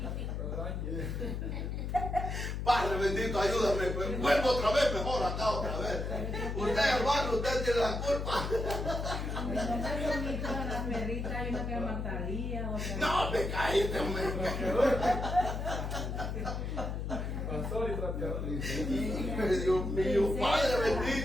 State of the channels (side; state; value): left; noise; hum, 3 dB below the sound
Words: Padre bendito, ayúdame, pues, vuelvo otra vez, mejor acá otra vez. Usted, hermano, usted tiene la culpa. Las perritas, hay una que llama Talía, otra. No, me cállate, hombre. Pastor y trapeador. Dios mío, Padre